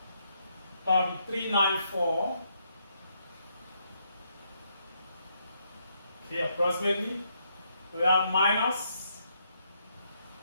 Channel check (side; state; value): both; inverted; correlation -0.76